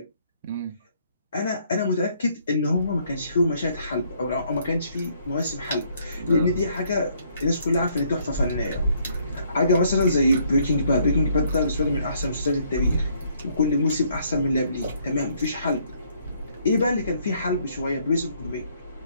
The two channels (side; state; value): both; inverted; correlation -0.67